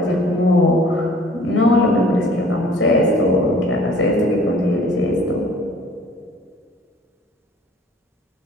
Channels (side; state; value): both; normal; correlation 0.52